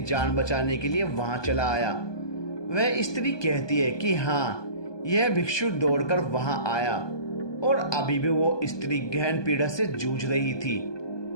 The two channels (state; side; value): late; right; 1.2 ms